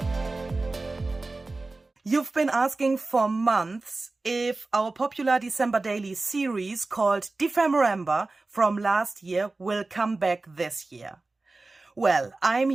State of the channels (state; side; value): quieter; left; 3.3 dB